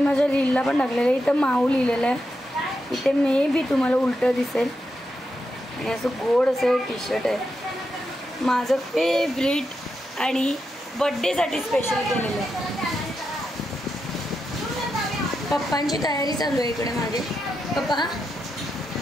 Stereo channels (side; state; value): both; normal; correlation 0.86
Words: माझ्या रीलला पण टाकलेला आहे. इथं माऊ लिहिलेलं आहे, इथे मे बी तुम्हाला उलटं दिसेल. आणि असं गोड असं टी शर्ट आहे, माझं फेवरेट आणि बड्डेसाठी स्पेशल केलेलं आहे. पप्पांची तयारी चालू आहे इकडे मागे. पप्पा